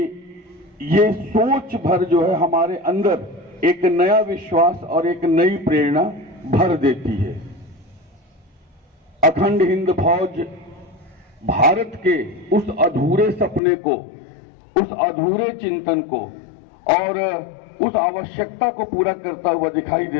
ये सोच भर जो है हमारे अंदर एक नया विश्वास और एक नई प्रेरणा भर देती है। अखंड हिंद फौज भारत के उस अधूरे सपने को, उस अधूरे चिंतन को और उस आवश्यकता को पूरा करता हुआ दिखाई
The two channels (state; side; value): drops out; right; at 13.6 s